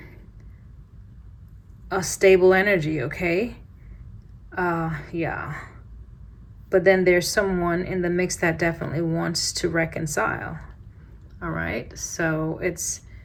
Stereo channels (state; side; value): identical; both; correlation 1.00